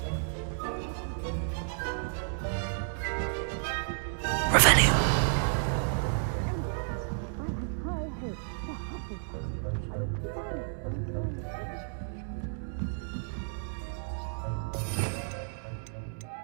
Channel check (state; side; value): silent; left; digital silence